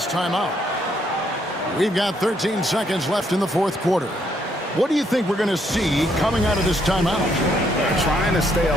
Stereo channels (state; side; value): normal; both; correlation 0.72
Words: timeout. We've got 13 seconds left in the fourth quarter. What do you think we're going to see coming out of this timeout? Trying to stay